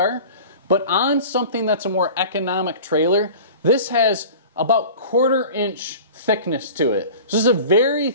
but on something that's a more economic trailer, this has about 1/4 inch thickness to it. So this is a very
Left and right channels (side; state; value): both; inverted; correlation -0.39